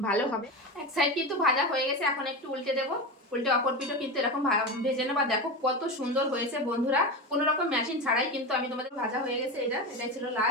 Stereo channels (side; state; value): both; normal; correlation 0.21